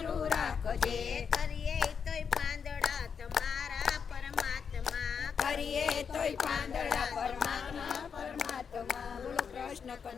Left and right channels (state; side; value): quieter; right; 6.5 dB